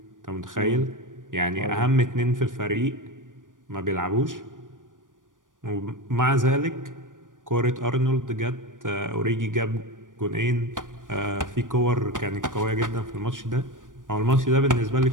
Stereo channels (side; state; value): left; late; 0.88 ms